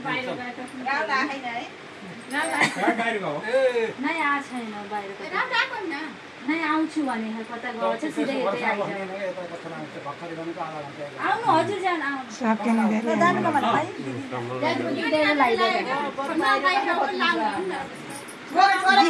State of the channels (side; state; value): both; identical; correlation 1.00